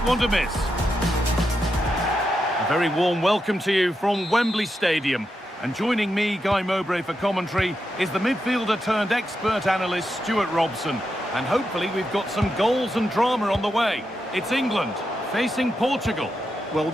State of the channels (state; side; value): normal; both; correlation 0.86